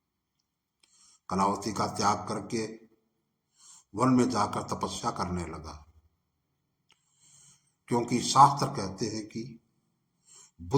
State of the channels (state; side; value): identical; both; correlation 1.00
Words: कलावती का त्याग करके वन में जाकर तपस्या करने लगा, क्योंकि शास्त्र कहते हैं कि